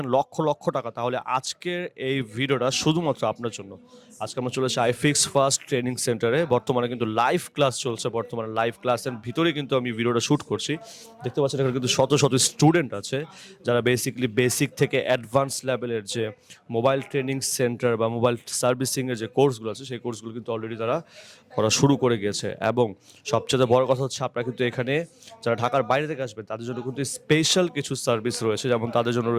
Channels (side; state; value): both; identical; correlation 1.00